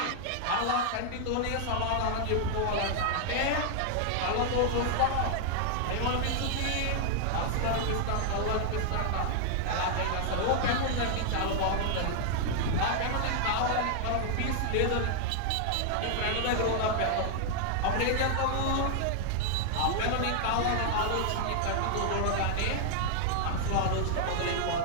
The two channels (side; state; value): both; different; correlation 0.00